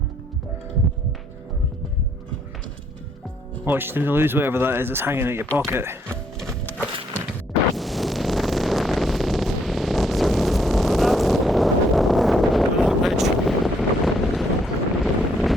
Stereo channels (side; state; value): both; normal; correlation 0.69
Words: Watch to lose whatever that is that's hanging out your pocket.